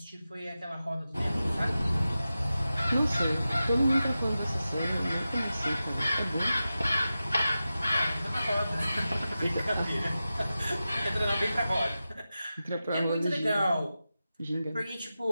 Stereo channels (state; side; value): inverted; both; correlation -0.93